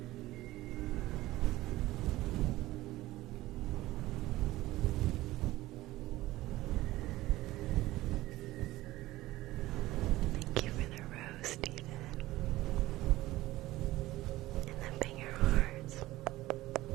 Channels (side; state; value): left; quieter; 17.1 dB